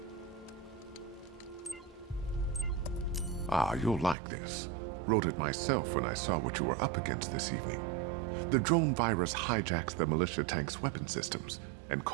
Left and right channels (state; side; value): drops out; left; at 4.2 s